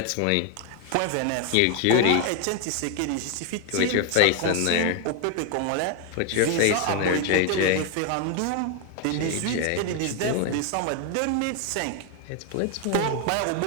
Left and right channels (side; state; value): both; different; correlation 0.01